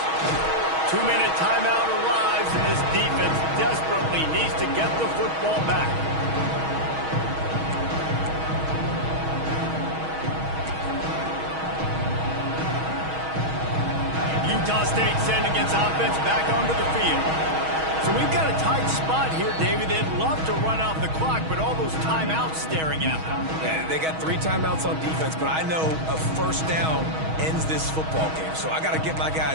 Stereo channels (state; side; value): late; left; 6.3 ms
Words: 2-minute timeout arrives, and this defense desperately needs to get the football back. Utah State sending its offense back onto the field. So we've got a tight spot here, David. They'd love to run out the clock, but all those timeouts staring at them. Yeah, they got 3 timeouts on defense, but I know a first down ends this football game. So I got to get my